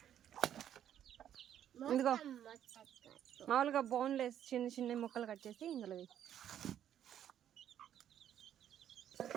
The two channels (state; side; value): quieter; left; 10.4 dB